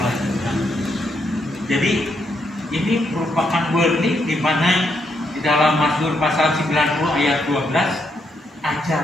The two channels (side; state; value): both; normal; correlation 0.78